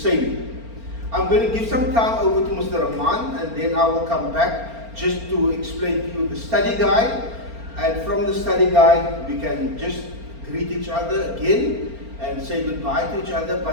I'm going to give some time over to Mr. Rahman, and then I will come back just to explain to you the study guide, and from the study guide we can just greet each other again and say goodbye to each other.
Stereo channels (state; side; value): late; left; 4.4 ms